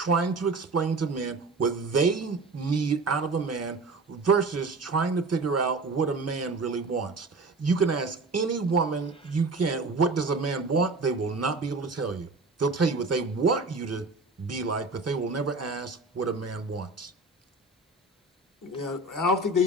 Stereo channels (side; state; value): left; quieter; 3.4 dB